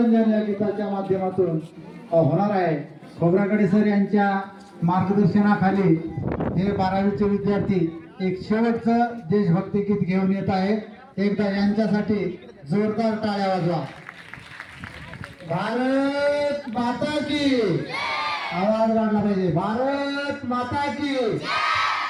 या गीताच्या माध्यमातून होणार आहे। खोब्रागडे सर यांच्या मार्गदर्शनाखाली हे 12वीचे विद्यार्थी एक शेवटचं देशभक्ती गीत घेऊन येत आहेत। एकदा यांच्यासाठी जोरदार टाळ्या वाजवा। भारत माता की आवाज वाढला पाहिजे। भारत माता की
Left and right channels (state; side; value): identical; both; correlation 1.00